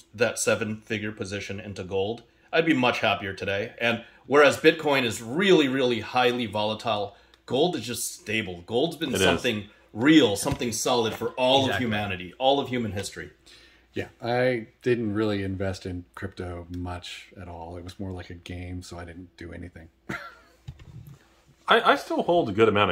that 7-figure position into gold, I'd be much happier today. And whereas Bitcoin is really, really highly volatile, gold is just stable. Gold's been something real, something solid for all of humanity, all of human history. Yeah, I didn't really invest in crypto much at all. It was more like a game, so I didn't do anything. I still hold a good amount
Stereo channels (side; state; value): both; identical; correlation 1.00